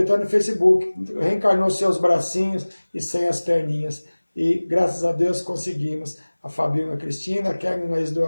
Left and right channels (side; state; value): both; inverted; correlation -1.00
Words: até no Facebook, reencarnou seus bracinhos e sem as perninhas. E graças a Deus conseguimos. A Fabinho, a Cristina, a Kevin, a do